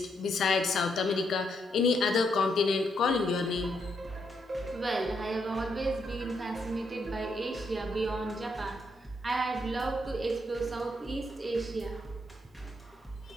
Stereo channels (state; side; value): normal; both; correlation 0.77